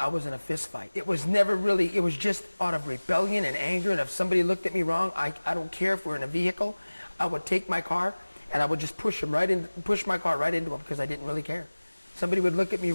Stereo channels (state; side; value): inverted; both; correlation -1.00